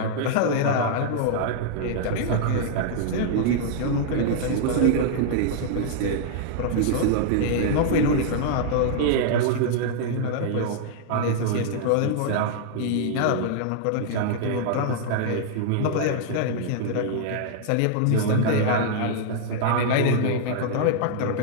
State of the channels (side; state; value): both; different; correlation -0.01